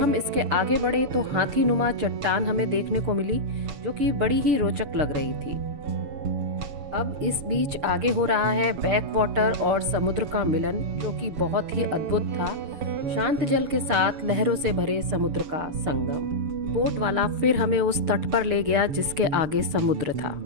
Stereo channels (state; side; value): late; left; 7.0 ms